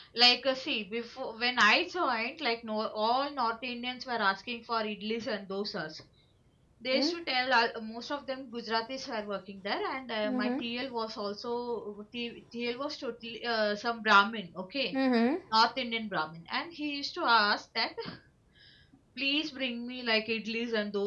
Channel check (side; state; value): both; identical; correlation 1.00